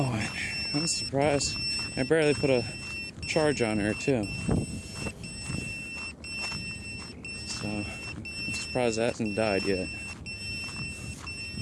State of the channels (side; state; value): both; identical; correlation 1.00